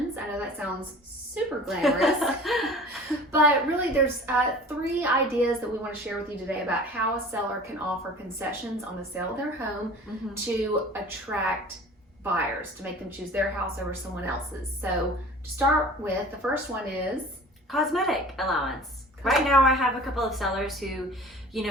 I know that sounds super glamorous, but really there's three ideas that we want to share with you today about how a seller can offer concessions on the sale of their home to attract buyers, to make them choose their house over someone else's. So to start with, the first one is cosmetic allowance. Right now I have a couple of sellers who,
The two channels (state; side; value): normal; both; correlation 0.43